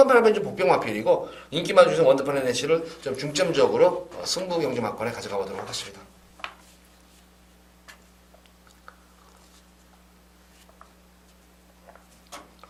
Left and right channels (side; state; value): both; identical; correlation 1.00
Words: 8번 좀 복병 마필이고 인기 많은 원더풀 헤네시를 좀 중점적으로 승부 경주 막권에 가져가 보도록 하겠습니다.